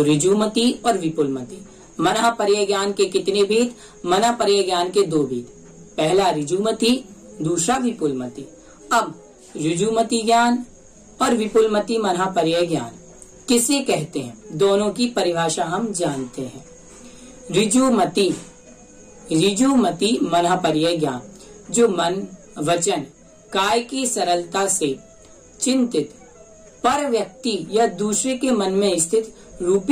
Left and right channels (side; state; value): both; identical; correlation 1.00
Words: ऋजु मति और विपुल मति। मन पर्याय ज्ञान के कितने भेद? मन पर्याय ज्ञान के 2 भेद, पहला ऋजु मति, दूसरा विपुल मति। अब ऋजु मति ज्ञान और विपुल मति मन पर्याय ज्ञान किसे कहते हैं, दोनों की परिभाषा हम जानते हैं। ऋजु मति मन पर्याय ज्ञान, जो मन, वचन, काय की सरलता से चिंतित पर व्यक्ति या दूसरे के मन में स्थित